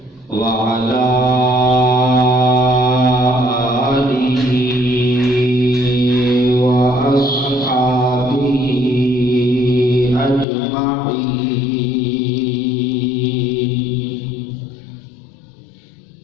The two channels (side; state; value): right; drops out; at 10.5 s